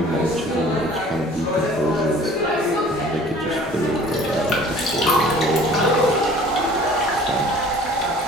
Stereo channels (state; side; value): normal; both; correlation 0.49